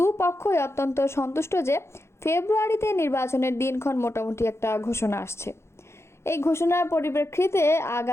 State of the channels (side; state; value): right; late; 0.13 ms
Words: অত্যন্ত সন্তুষ্ট যে ফেব্রুয়ারিতে নির্বাচনের দিনক্ষণ মোটামুটি একটা ঘোষণা আসছে। এই ঘোষণার পরিপ্রেক্ষিতে